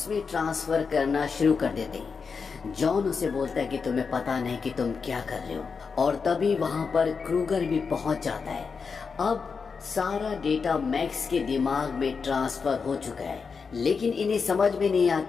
ट्रांसफर करना शुरू कर देते हैं। जॉन उसे बोलता है कि तुम्हें पता नहीं कि तुम क्या कर रहे हो, और तभी वहां पर क्रूगर भी पहुंच जाता है। अब सारा डेटा मैक्स के दिमाग में ट्रांसफर हो चुका है, लेकिन इन्हें समझ में नहीं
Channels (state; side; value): quieter; right; 5.4 dB